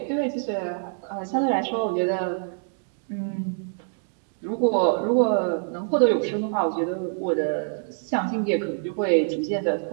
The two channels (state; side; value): silent; left; digital silence